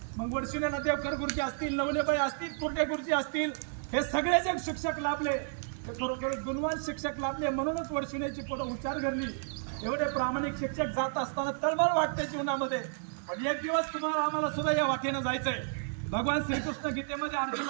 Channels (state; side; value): silent; left; digital silence